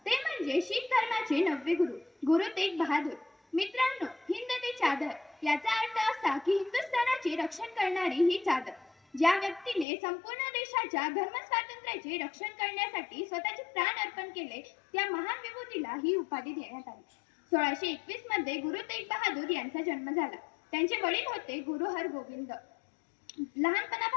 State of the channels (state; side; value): drops out; right; at 9.9 s